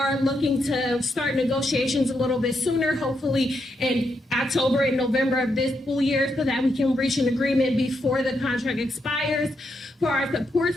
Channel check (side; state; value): both; normal; correlation 0.81